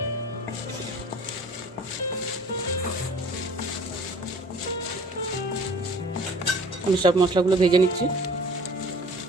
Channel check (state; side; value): normal; both; correlation 0.48